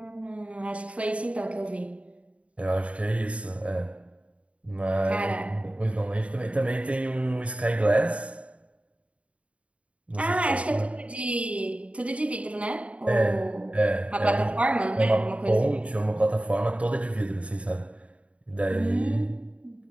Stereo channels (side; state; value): left; late; 0.063 ms